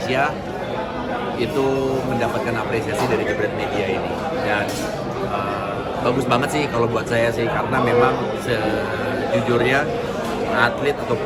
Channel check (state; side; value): identical; both; correlation 1.00